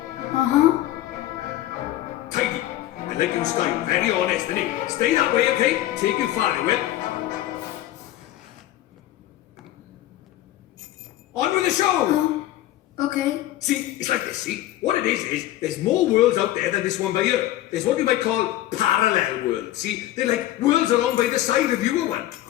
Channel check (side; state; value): right; quieter; 14.5 dB